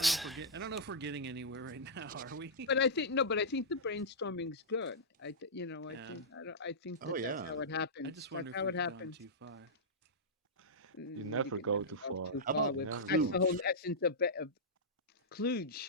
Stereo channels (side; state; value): both; normal; correlation -0.13